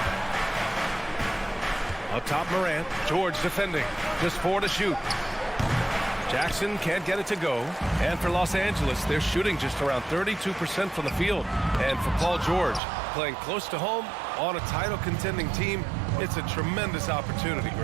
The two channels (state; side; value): drops out; left; at 12.8 s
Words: Up top, Morant. George defending. Just 4 to shoot. Jackson can't get it to go. And for Los Angeles, they're shooting just around 32% from the field. And for Paul George, playing close to home on a title-contending team, it's a tremendous opportunity,